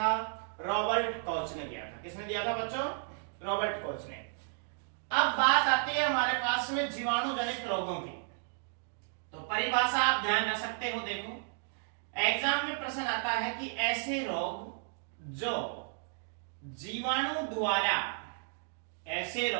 रॉबर्ट कॉच ने दिया था। किसने दिया था बच्चों? रॉबर्ट कॉच ने। अब बात आती है हमारे पास में जीवाणु जनित रोगों की। तो परिभाषा आप ध्यान रख सकते हो। देखो, एग्जाम में प्रश्न आता है कि ऐसे रोग जो जीवाणु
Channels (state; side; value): silent; left; 56 dB below the other